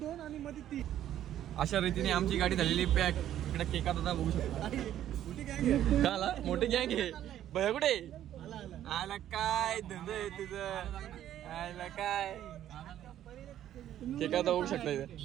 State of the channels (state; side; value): quieter; left; 11.6 dB